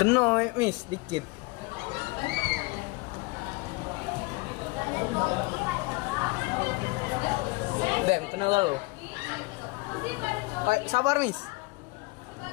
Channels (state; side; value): quieter; right; 24.9 dB